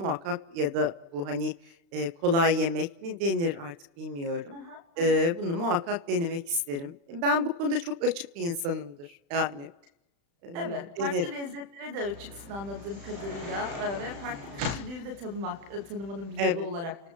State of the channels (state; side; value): late; left; 35 ms